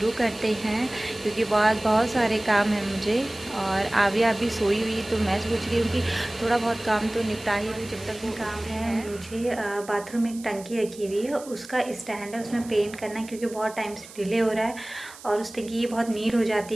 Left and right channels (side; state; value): right; noise; hiss, 18 dB below the sound